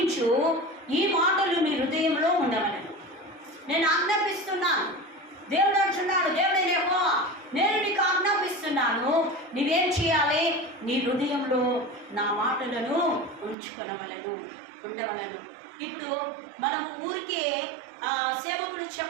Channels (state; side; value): drops out; left; at 13.6 s